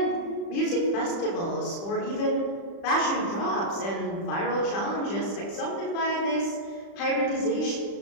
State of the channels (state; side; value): late; right; 35 ms